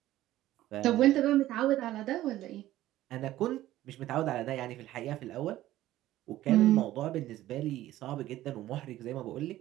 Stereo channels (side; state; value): left; quieter; 14.7 dB